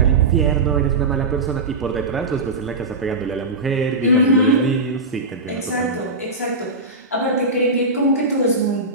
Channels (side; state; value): left; quieter; 3.1 dB